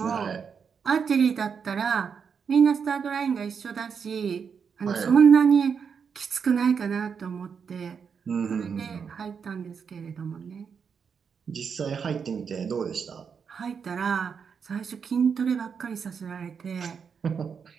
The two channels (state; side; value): quieter; left; 6.5 dB